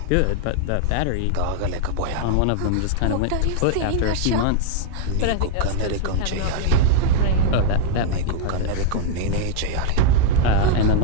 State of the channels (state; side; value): different; both; correlation 0.00